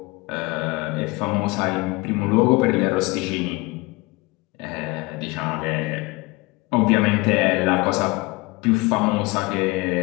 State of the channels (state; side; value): quieter; right; 23.5 dB